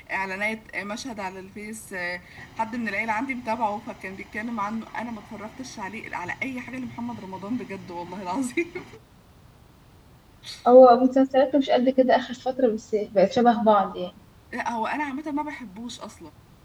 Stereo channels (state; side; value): identical; both; correlation 1.00